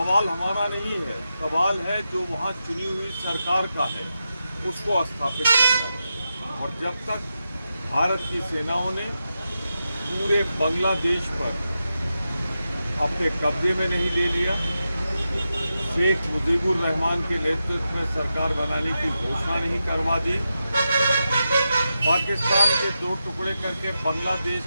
हमारा नहीं है, सवाल है जो वहाँ चुनी हुई सरकार का है, उसको स्थापित करना है। और जब तक भारत की सेनाओं ने पूरे बांग्लादेश पर अपने कब्जे में नहीं ले लिया, शेख मुजीबुर रहमान के नेतृत्व में सरकार बनाने की घोषणा नहीं करवा दी, पाकिस्तान के दो टुकड़े करके बांग्लादेश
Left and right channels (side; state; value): both; inverted; correlation -0.89